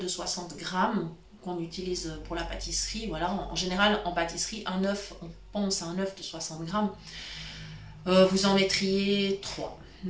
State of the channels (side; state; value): both; identical; correlation 1.00